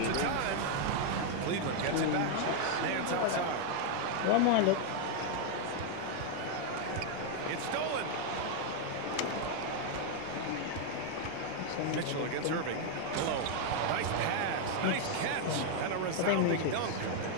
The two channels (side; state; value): both; different; correlation 0.00